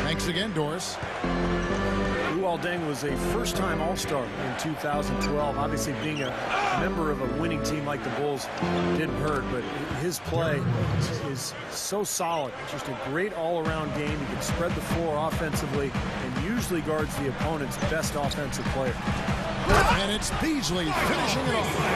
Thanks again, Doris. Luol Deng was a first-time All-Star in 2012. Obviously, being a member of a winning team like the Bulls didn't hurt, but his play is so solid. Just a great all-around game. He can spread the floor offensively and usually guards the opponent's best offensive player. And it's Beasley finishing it off.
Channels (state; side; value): identical; both; correlation 1.00